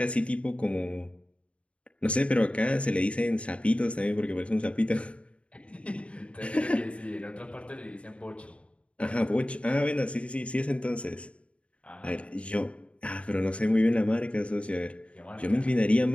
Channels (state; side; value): late; right; 0.061 ms